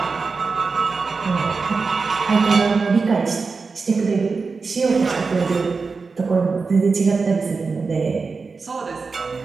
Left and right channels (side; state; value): left; quieter; 4.5 dB